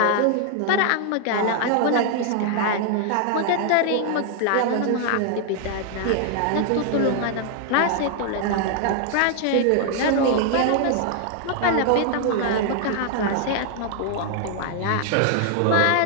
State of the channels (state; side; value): different; both; correlation 0.00